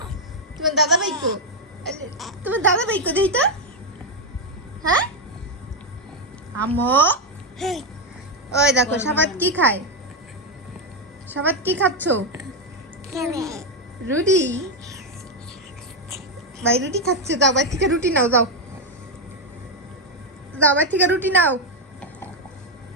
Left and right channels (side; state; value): both; normal; correlation 0.04